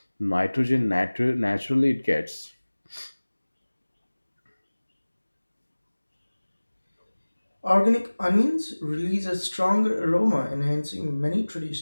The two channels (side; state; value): both; inverted; correlation -1.00